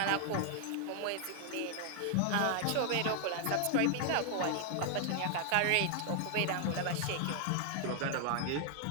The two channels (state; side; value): different; both; correlation 0.00